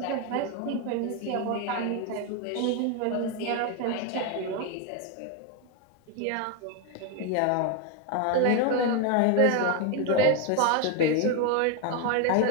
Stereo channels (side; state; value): both; different; correlation 0.02